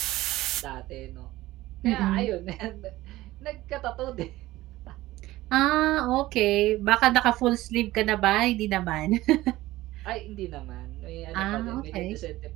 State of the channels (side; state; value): left; quieter; 17.1 dB